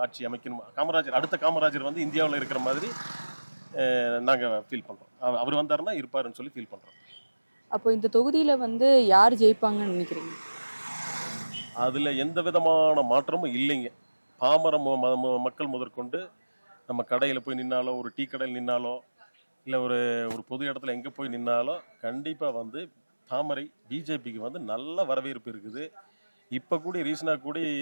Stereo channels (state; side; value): inverted; both; correlation -1.00